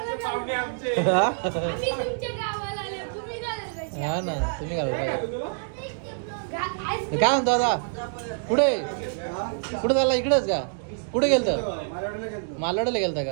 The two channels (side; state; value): left; silent; digital silence